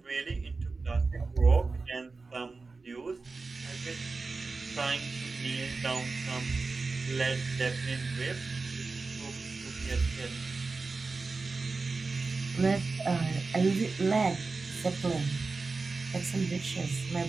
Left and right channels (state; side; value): quieter; left; 4.0 dB